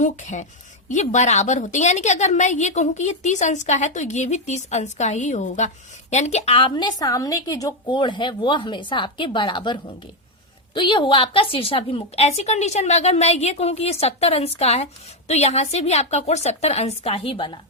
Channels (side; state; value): both; normal; correlation 0.05